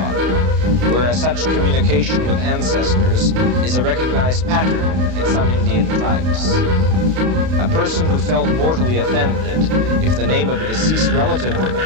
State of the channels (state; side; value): late; left; 32 ms